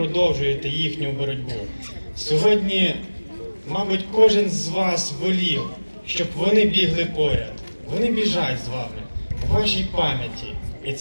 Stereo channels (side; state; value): both; inverted; correlation -1.00